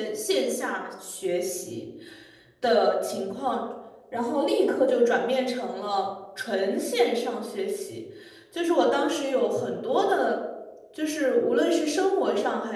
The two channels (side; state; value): both; identical; correlation 1.00